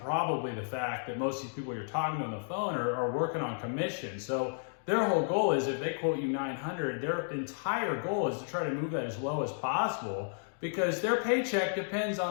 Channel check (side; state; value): right; silent; digital silence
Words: the fact that most of these people you're talking to on the phone are working on commission. So their whole goal is, if they quote you 900, their entire goal is to try to move that as low as possible, because their paycheck depends